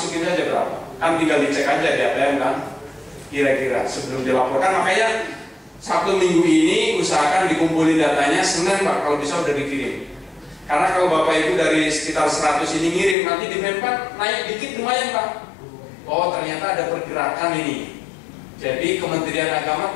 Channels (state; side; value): drops out; right; at 13.2 s